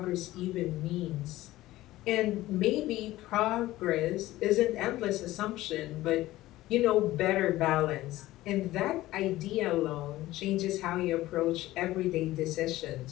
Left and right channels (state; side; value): quieter; right; 16.5 dB